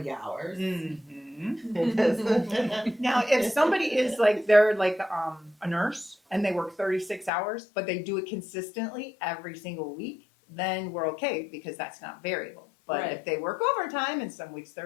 hours. Now, if somebody is they're a nurse and they work 36 hours, but they do it consistently every single week, then we're okay because that's not variable. But if they work overtime and some weeks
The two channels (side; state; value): right; drops out; at 7.3 s